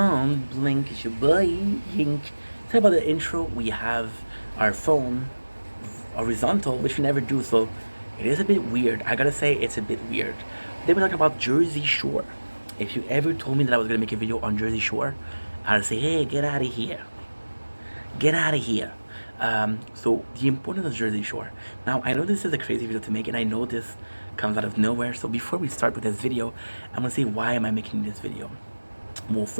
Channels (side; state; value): both; inverted; correlation -1.00